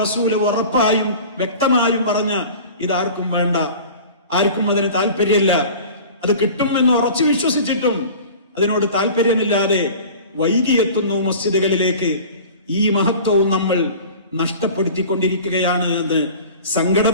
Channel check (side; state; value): both; inverted; correlation -0.40